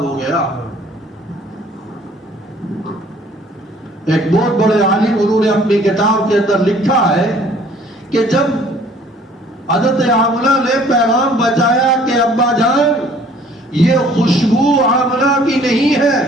ہو گیا۔ ایک بہت بڑے عالم انہوں نے اپنی کتاب کے اندر لکھا ہے کہ جب حضرت آمنہ نے پیغام بچایا کہ ابا جان یہ خوشبو آمنہ کی نہیں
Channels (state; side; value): normal; both; correlation 0.56